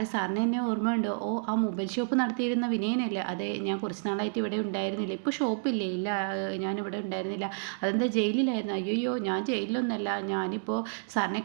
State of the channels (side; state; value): left; silent; digital silence